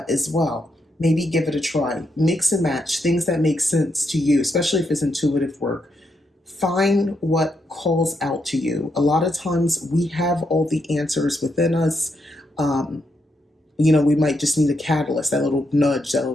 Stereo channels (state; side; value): normal; both; correlation 0.80